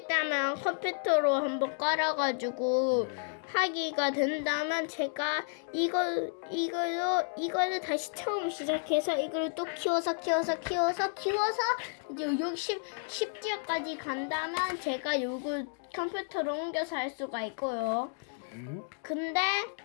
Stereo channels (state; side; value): silent; right; digital silence